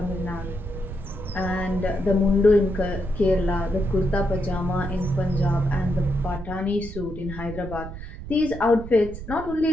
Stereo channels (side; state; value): right; noise; rumble, 11 dB below the sound